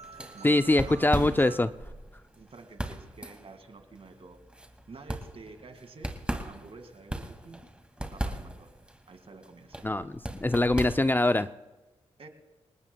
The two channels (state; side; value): normal; both; correlation 0.87